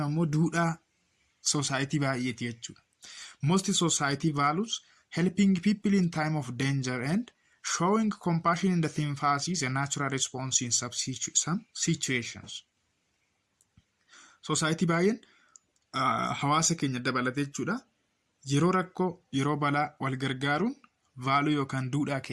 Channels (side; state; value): both; identical; correlation 1.00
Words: ammoo duudhaa society baay'eeti jechuudha. Most society values helping people in time of danger and showing compassion in the sympathy is a natural response in some situations. Society baay'een hawaasa keenya dabalatee jechuudha. Yeroo rakkoo, yeroo balaa wal gargaaruun vaaluu yookaan duudhaa